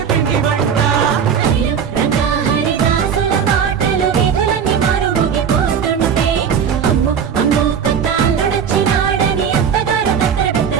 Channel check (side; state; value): left; quieter; 7.4 dB